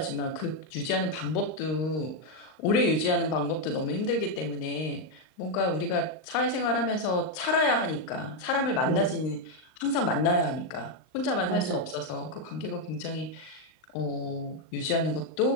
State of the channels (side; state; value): right; late; 39 ms